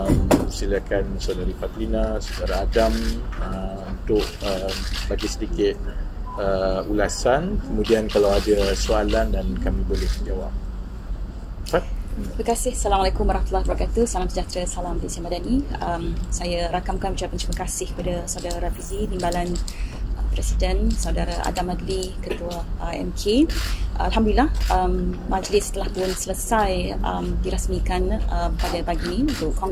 silakan Saudari Fatlina, Saudara Adam untuk bagi sedikit ulasan, kemudian kalau ada soalan dan kami boleh jawab. Terima kasih. Assalamualaikum warahmatullahi wabarakatuh. Salam sejahtera, salam Malaysia Madani. Saya rakamkan ucapan terima kasih kepada Saudara Rafizi, Timbalan Presiden, Saudara Adam Adli, Ketua MK. Alhamdulillah, majlis telah pun selesai dirasmikan pada pagi ini untuk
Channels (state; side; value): identical; both; correlation 1.00